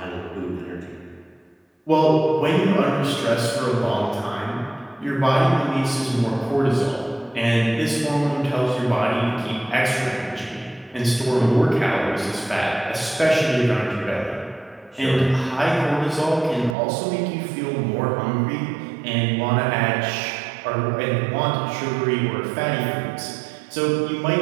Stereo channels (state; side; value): drops out; left; at 16.8 s